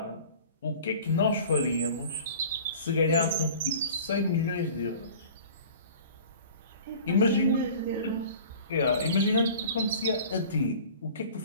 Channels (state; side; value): inverted; both; correlation -0.43